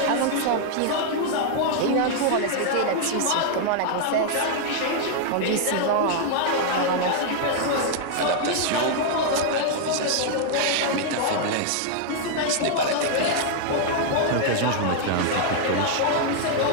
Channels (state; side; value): different; both; correlation -0.01